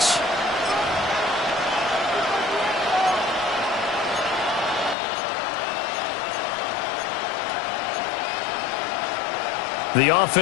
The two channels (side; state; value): right; drops out; at 5.0 s